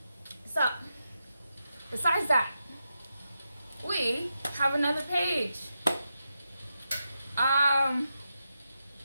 so besides that, we have another page.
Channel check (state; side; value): inverted; both; correlation -0.87